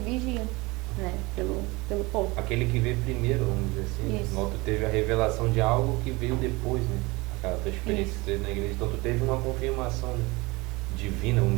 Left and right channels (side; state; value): left; quieter; 23.8 dB